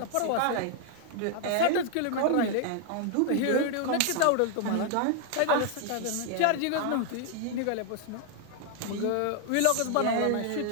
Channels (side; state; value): both; different; correlation 0.00